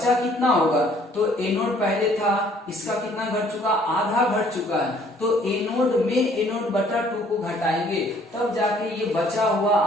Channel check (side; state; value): both; normal; correlation 0.60